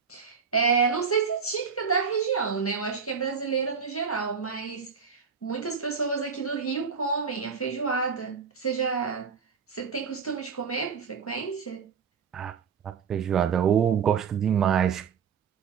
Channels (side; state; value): left; quieter; 6.3 dB